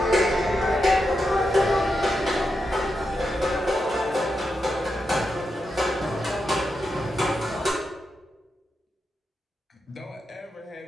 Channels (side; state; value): both; normal; correlation 0.86